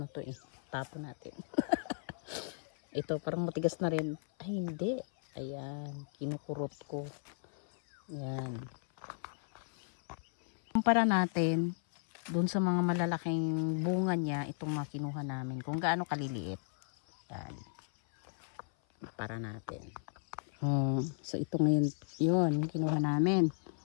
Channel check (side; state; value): right; silent; 54 dB below the other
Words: to eh. Tapon natin. Ito, parang matigas na rin. Ay, hindi. Ayan, kinukurot ko. Ayan. Kumpara natin doon sa mga malalaking bunga niya, itong mga kinuha namin, kung gaano kaliliit. Yan. Para natin. So ito ngayon, yun, kinuha namin.